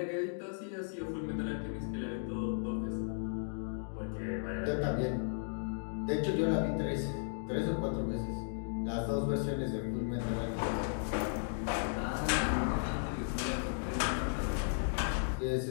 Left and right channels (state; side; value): silent; right; digital silence